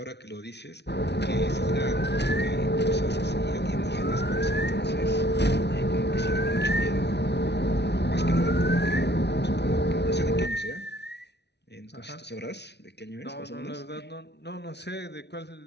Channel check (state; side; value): late; right; 0.50 ms